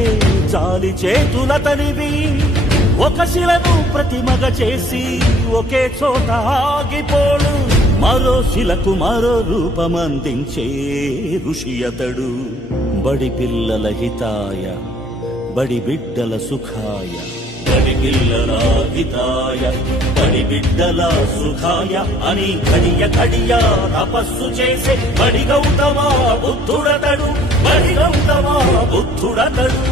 చాలి చేతులతనివి. ఒక శిలను ప్రతిమగా చేసి ఒకే చోట ఆగిపోడు, మరో శిలకు మరో రూపమందించే ఋషి అతడు. బడి పిల్లల హితాయ, బడి బిడ్డల సుఖాయ, బడి పిల్లల హితాయ, బడి బిడ్డల సుఖాయ అని కడియ కడియ తపస్సు చేసే బడి గౌతమ బుద్ధుడతడు, బడి గౌతమ బుద్ధుడతడు.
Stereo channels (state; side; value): normal; both; correlation 0.58